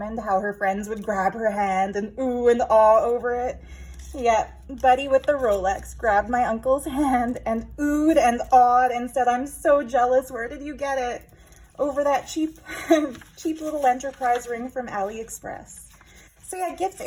how her friends would grab her hand and ooh and awe over it. Yeah, Buddy with the Rolex grabbed my uncle's hand and oohed and awed and said, I'm so jealous. Where did you get it? Over that cheap little enterprise ring from AliExpress. So yeah, gifts,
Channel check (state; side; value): identical; both; correlation 1.00